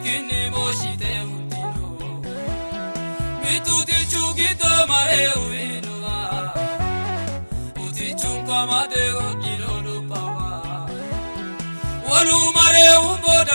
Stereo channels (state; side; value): inverted; both; correlation -1.00